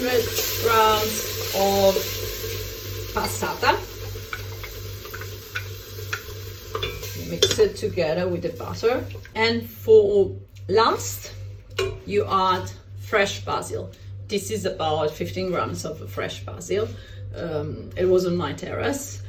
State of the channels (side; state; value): both; identical; correlation 1.00